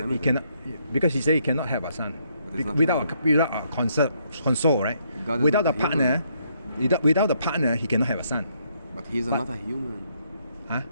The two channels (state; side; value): inverted; both; correlation -0.73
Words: limited. cannot, because He said He cannot have a son But it's not without limited. a console, right? God is Without not a a partner, without a partner, He cannot have a son. But he's not a human. Huh?